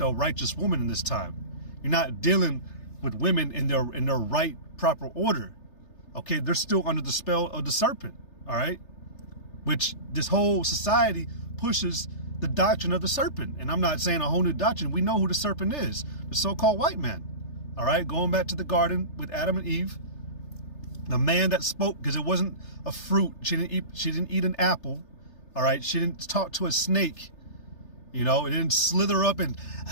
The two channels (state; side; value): late; right; 3.3 ms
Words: righteous woman in this time. You're not dealing with women in their right, proper order. Okay. They're still under the spell of the serpent. All right. Which this whole society pushes the doctrine of the serpent. And I'm not saying a whole new doctrine. We know who the serpent is, the so-called white man. All right. Going back to the garden with Adam and Eve, the man that spoke, because it wasn't a fruit. She didn't eat an apple. All right. She didn't talk to a snake. You know, it didn't slither up and,